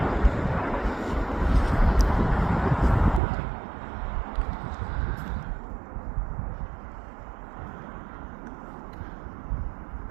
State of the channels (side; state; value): left; drops out; at 3.2 s